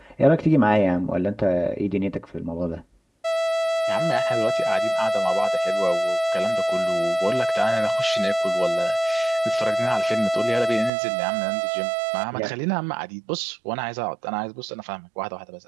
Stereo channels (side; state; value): left; drops out; at 10.9 s